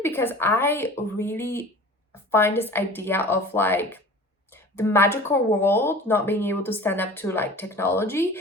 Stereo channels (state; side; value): normal; both; correlation 0.41